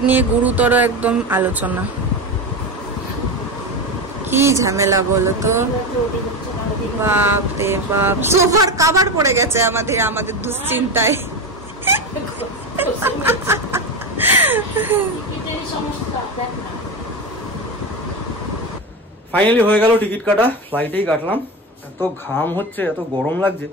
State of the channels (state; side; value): normal; both; correlation 0.19